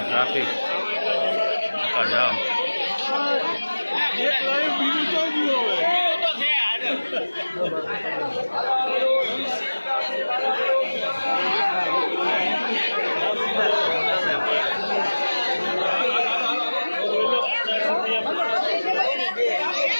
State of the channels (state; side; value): inverted; both; correlation -1.00